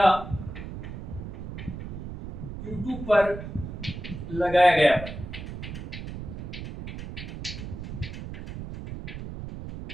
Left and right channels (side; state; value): right; noise; rumble, 9 dB below the sound